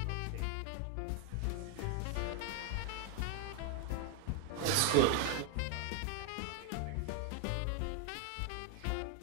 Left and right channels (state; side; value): different; both; correlation 0.01